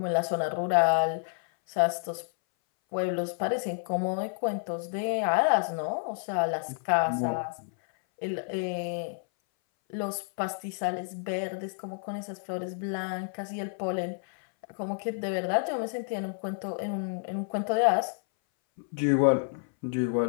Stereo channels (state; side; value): silent; right; 58 dB below the other